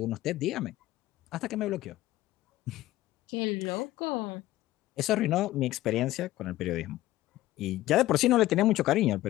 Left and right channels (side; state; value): right; quieter; 15.8 dB